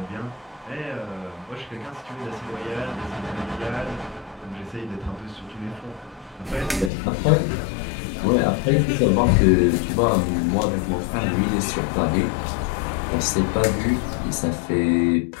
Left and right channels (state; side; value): drops out; right; at 6.9 s